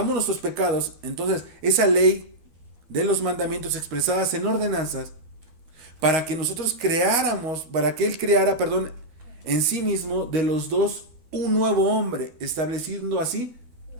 nuestros pecados. Entonces, esa ley de los mandamientos expresadas en ordenanzas, para que nosotros creáramos, para que Él creara, en sí mismo, de los dos, un nuevo hombre, estableciendo así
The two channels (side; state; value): left; late; 13 ms